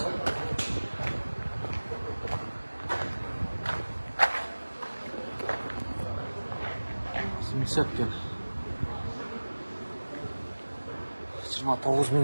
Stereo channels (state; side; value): inverted; both; correlation -1.00